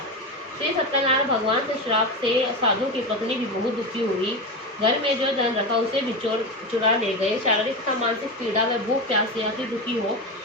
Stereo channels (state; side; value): normal; both; correlation 0.19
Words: श्री सत्यनारायण भगवान से श्राप से साधु की पत्नी भी बहुत दुखी हुई। घर में जो धन रखा उसे भी चोर चुरा ले गए। शारीरिक तथा मानसिक पीड़ा व भूख प्यास से अति दुखी हो